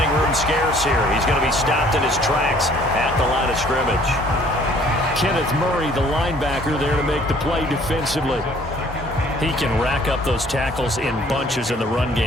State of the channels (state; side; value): normal; both; correlation 0.57